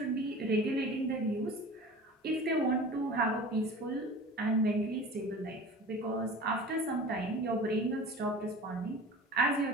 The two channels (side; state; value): both; normal; correlation 0.39